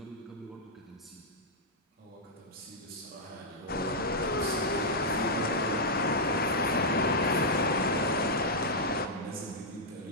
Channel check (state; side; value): normal; both; correlation -0.06